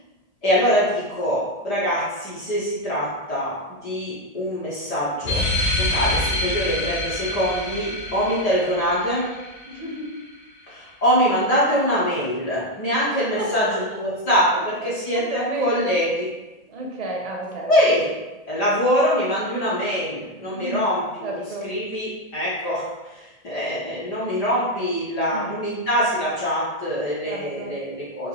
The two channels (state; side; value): late; right; 1.8 ms